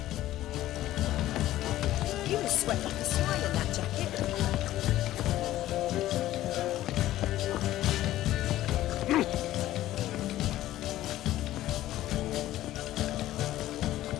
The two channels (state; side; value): quieter; right; 14.5 dB